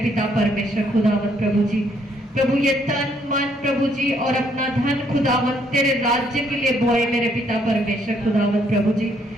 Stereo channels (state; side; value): normal; both; correlation 0.69